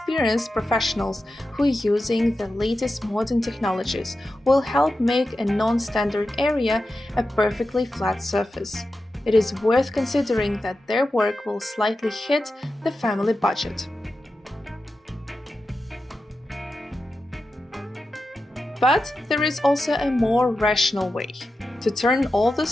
professionals who, using the latest modern technologies, will help make a non-standard area a perfectly flat surface. It is worth considering that their work will slightly hit the family budget. But there is also a more rational way to turn all the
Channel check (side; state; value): both; normal; correlation 0.91